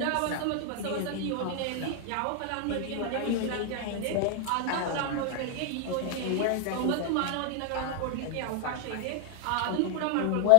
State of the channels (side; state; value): both; different; correlation 0.00